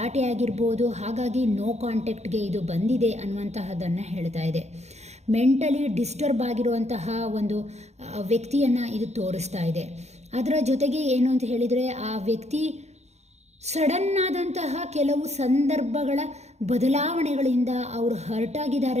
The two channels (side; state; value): left; late; 0.32 ms